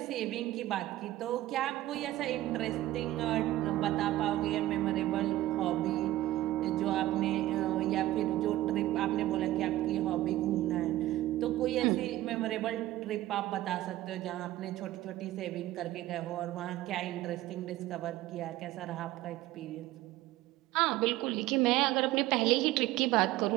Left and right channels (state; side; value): quieter; left; 15.6 dB